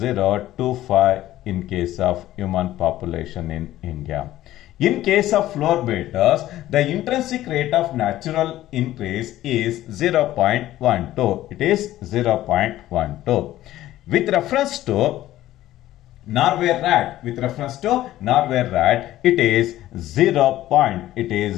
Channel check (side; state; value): right; quieter; 14.5 dB